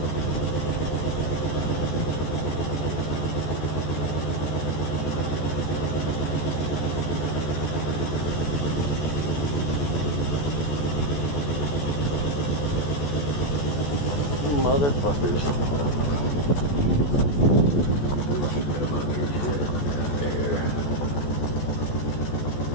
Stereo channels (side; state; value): right; late; 14 ms